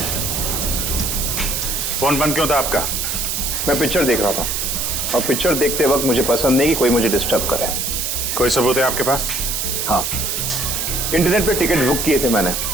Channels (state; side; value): noise; right; hiss, 1 dB below the sound